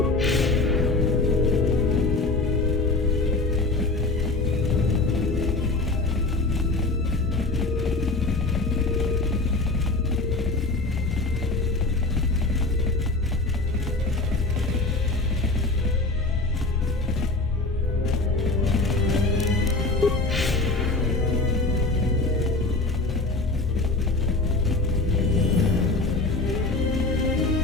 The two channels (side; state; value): right; quieter; 3.2 dB